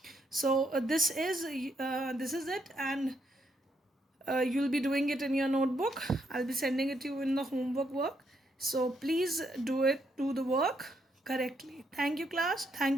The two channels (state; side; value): normal; both; correlation 0.76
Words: So this is it, and you'll be doing it in your notebook. I'll be sending it to you in the homework work. So please do the work correctly. Thank you, class.